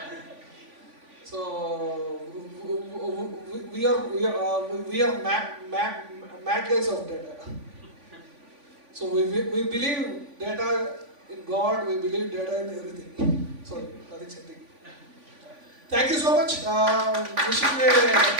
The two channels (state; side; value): late; left; 3.5 ms